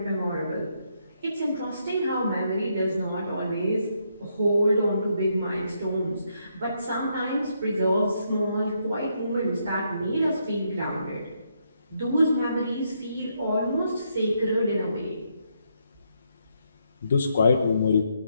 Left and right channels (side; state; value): both; inverted; correlation -0.77